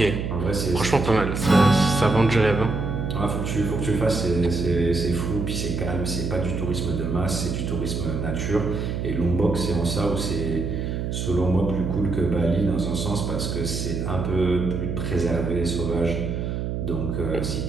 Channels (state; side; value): noise; right; hum, 2 dB below the sound